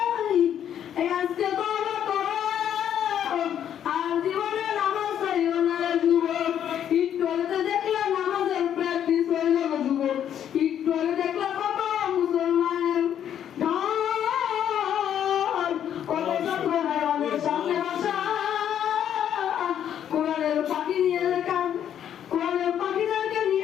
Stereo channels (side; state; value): right; quieter; 9.7 dB